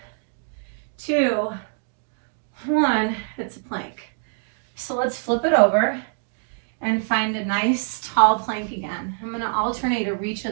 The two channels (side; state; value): left; silent; digital silence